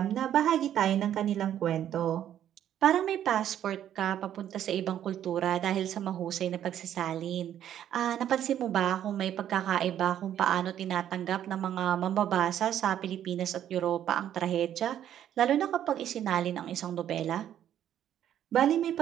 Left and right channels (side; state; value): left; quieter; 10.7 dB